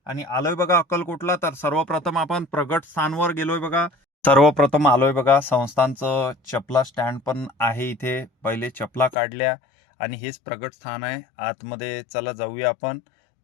आणि आलोय बघा अक्कलकोटला. तर सर्वप्रथम आपण प्रगट स्थानवर गेलोय बघा. सर्वप्रथम आलोय बघा संस्थांचं चपला स्टँड पण आहे इथे. पहिले चपला काढल्या आणि हेच प्रगट स्थान आहे. आतमध्ये चला जाऊया आपण.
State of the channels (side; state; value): right; drops out; at 9.2 s